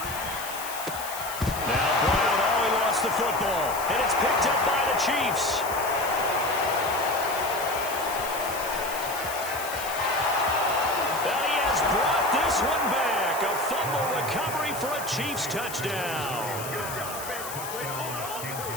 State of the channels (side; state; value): left; noise; hiss, 10 dB below the sound